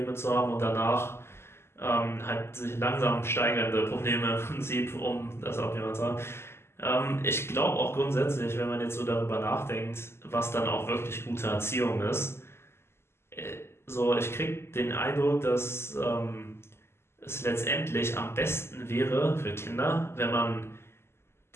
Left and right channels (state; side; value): late; right; 0.12 ms